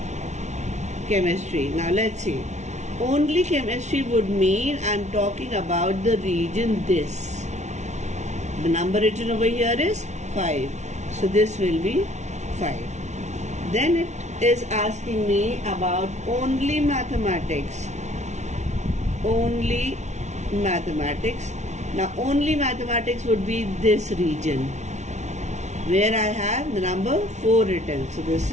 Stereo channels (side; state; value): left; late; 0.33 ms